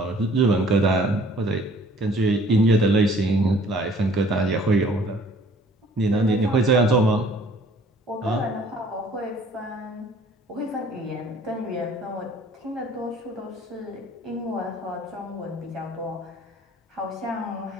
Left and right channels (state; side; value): normal; both; correlation 0.54